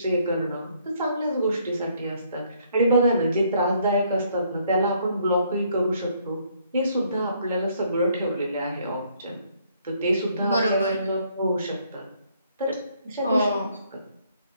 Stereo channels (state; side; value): inverted; both; correlation -0.67